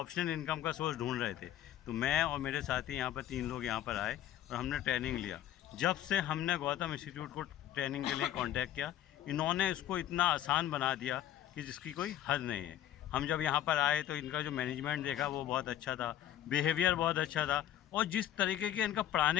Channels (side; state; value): right; quieter; 11.9 dB